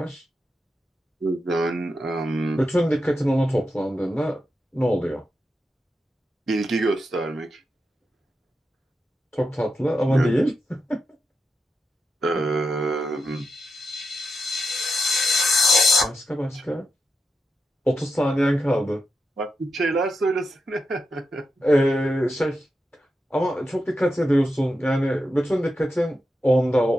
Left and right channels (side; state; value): both; normal; correlation 0.86